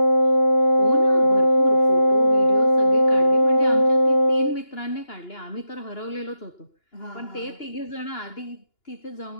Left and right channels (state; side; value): late; right; 2.9 ms